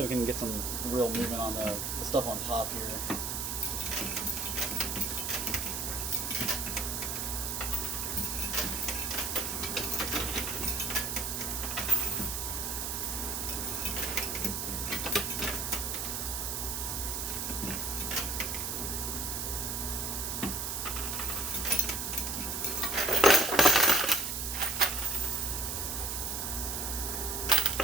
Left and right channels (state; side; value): noise; right; hiss, 2 dB below the sound